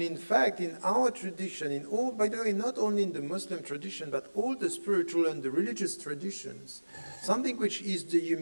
in fact, in our tradition, in all, by the way, not only in the Muslim tradition, but all the spiritual and the religious traditions, something which is the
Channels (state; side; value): inverted; both; correlation -1.00